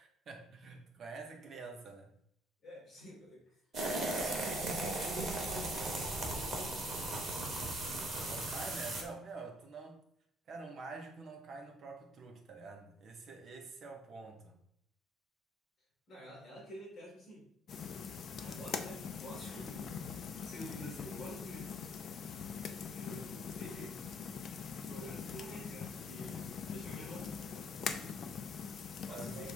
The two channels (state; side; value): normal; both; correlation 0.64